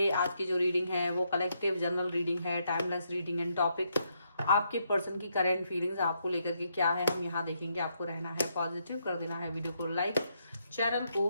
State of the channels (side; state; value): both; inverted; correlation -0.77